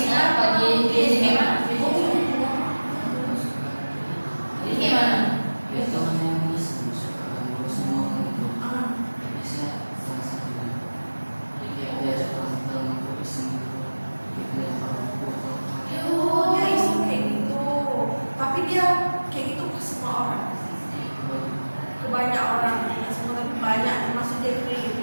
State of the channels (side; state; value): both; inverted; correlation -1.00